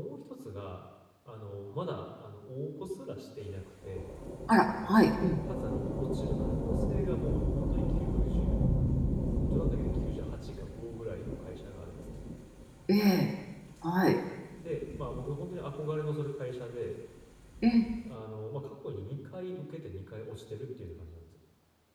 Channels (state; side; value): identical; both; correlation 1.00